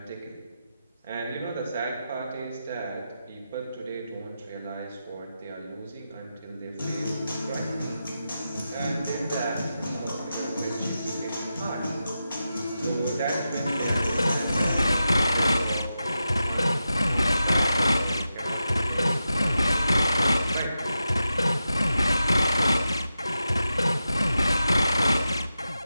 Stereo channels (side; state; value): both; inverted; correlation -0.90